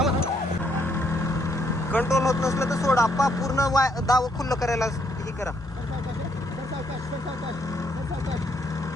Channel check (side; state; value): both; normal; correlation 0.71